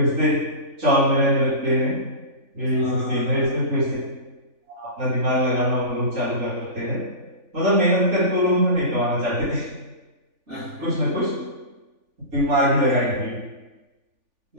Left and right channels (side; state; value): left; late; 3.5 ms